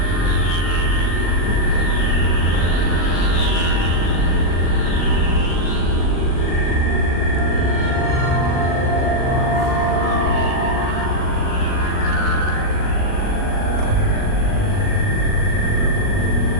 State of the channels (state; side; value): late; right; 39 ms